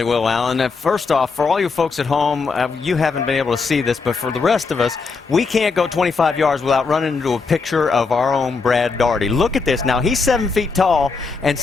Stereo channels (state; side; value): quieter; right; 4.6 dB